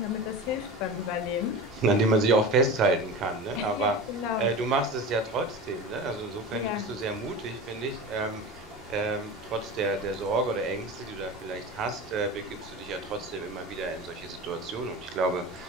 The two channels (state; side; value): normal; both; correlation 0.30